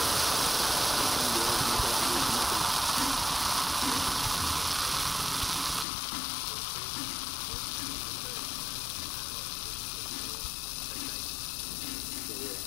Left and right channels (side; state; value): right; drops out; at 5.9 s